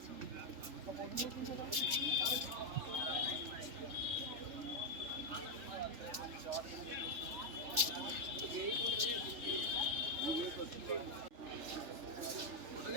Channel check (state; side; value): late; left; 3.4 ms